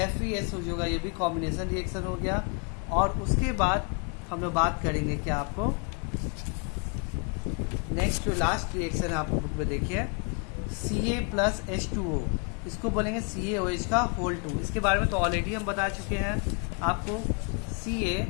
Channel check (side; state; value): right; quieter; 36.4 dB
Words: हो जाएगा, ये भी कॉम्बिनेशन रिएक्शन हो गया। और उसके बाद हम लोग बात करेंगे क्या, आपको नेक्स्ट लास्ट रिएक्शन आपको बुक में देखिए, Ca+H2O, इसको बोलेंगे CaOH का होल 2। इसके बारे में तो ऑलरेडी हम बता चुके हैं आपको।